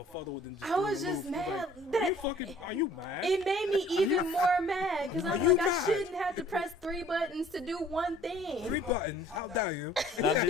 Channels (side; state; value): both; normal; correlation 0.54